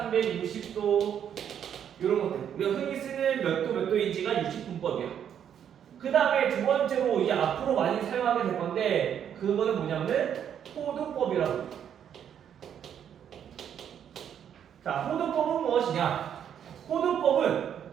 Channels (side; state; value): left; quieter; 9.0 dB